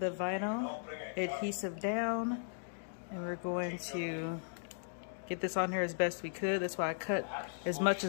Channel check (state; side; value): silent; right; digital silence